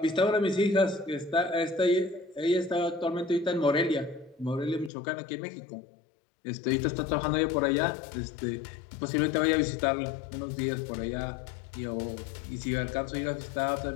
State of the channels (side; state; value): right; drops out; at 4.9 s